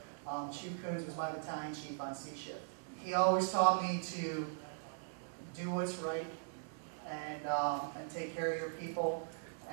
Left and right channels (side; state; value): left; silent; digital silence